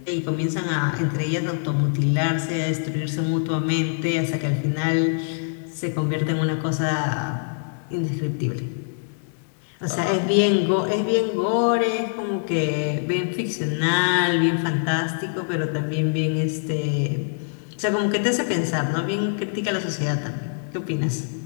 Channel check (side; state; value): right; silent; 62 dB below the other